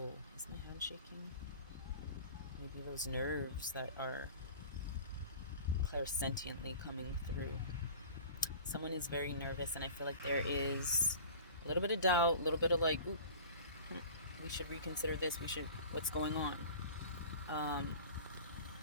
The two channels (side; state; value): both; inverted; correlation -0.40